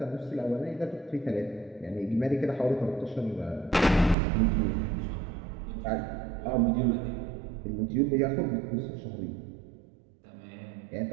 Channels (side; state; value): left; drops out; at 4.2 s